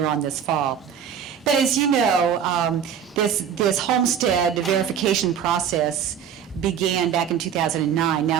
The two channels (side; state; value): left; quieter; 8.2 dB